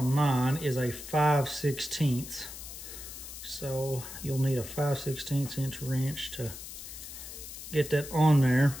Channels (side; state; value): left; noise; hiss, 11 dB below the sound